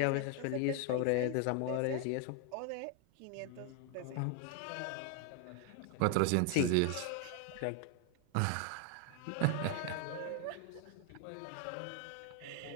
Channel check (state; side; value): different; both; correlation 0.00